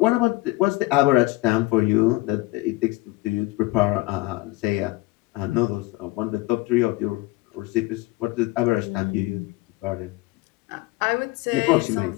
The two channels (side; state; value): right; quieter; 20.0 dB